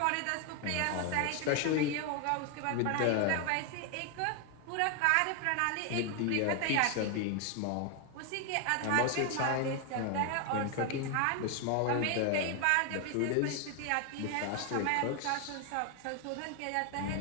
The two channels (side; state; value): both; different; correlation 0.01